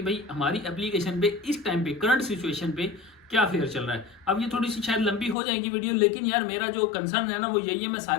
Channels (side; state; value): right; drops out; at 5.4 s